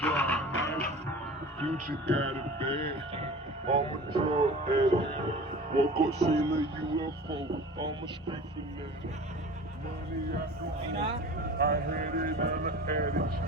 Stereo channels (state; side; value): normal; both; correlation 0.39